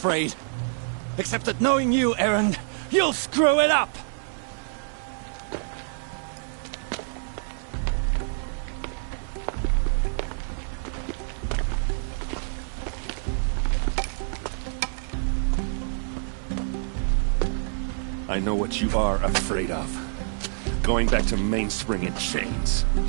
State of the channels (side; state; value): left; silent; 59 dB below the other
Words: Except that knowing you, Erend, you'll screw it up! I know what you are afraid of. Going back to Mainspring in chains.